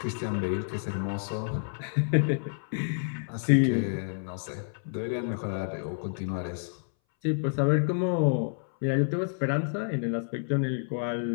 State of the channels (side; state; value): right; silent; 59 dB below the other